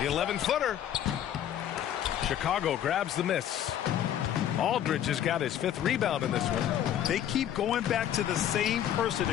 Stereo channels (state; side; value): quieter; right; 10.6 dB